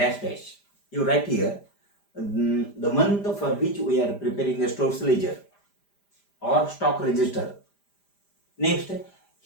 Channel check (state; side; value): late; right; 5.0 ms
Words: dash. You write here the month for which we are preparing a stores ledger or stock register. Next,